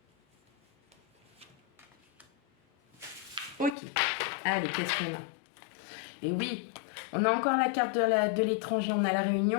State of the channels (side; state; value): right; drops out; at 3.8 s